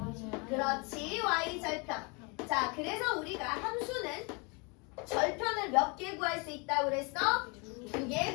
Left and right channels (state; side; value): quieter; right; 31.4 dB